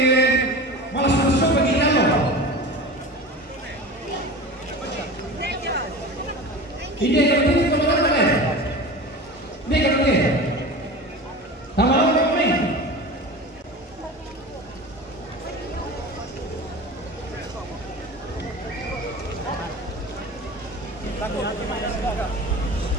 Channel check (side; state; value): both; normal; correlation 0.33